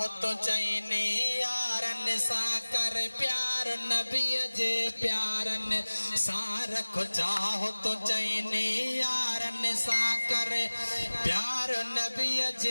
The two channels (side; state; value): both; inverted; correlation -1.00